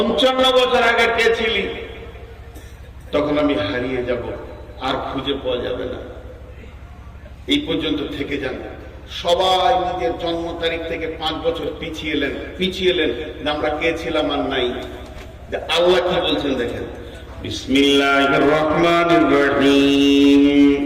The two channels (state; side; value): identical; both; correlation 1.00